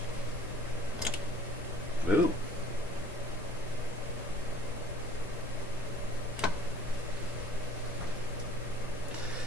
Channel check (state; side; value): normal; both; correlation 0.50